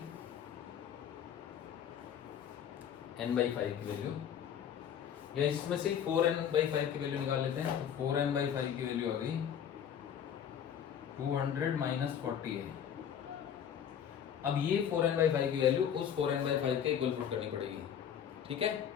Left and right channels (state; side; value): quieter; right; 8.7 dB